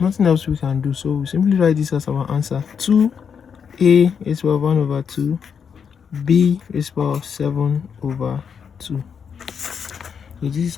nothing else we can do. So we simply write this as our answer. 2a raised to the power of 1 over 2, b raised to the power of 7 over 2. So this is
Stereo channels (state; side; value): quieter; right; 6.9 dB